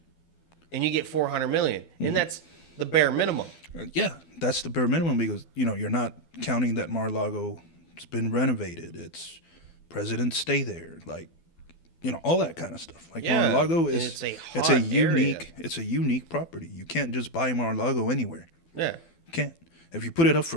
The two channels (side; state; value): right; late; 12 ms